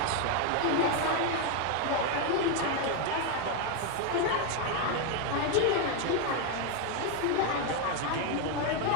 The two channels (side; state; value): both; different; correlation 0.01